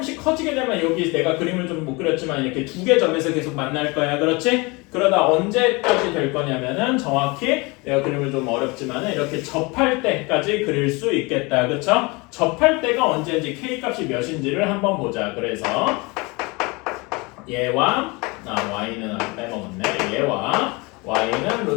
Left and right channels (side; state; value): right; quieter; 26.4 dB